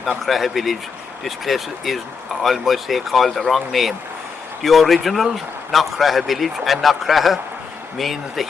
Knockraha village. This place is, I must say, called the wrong name. The original Knockraha village, and Knockraha means the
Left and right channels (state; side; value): quieter; right; 5.6 dB